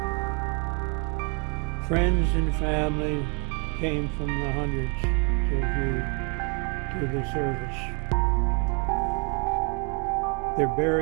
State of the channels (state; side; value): quieter; left; 34.1 dB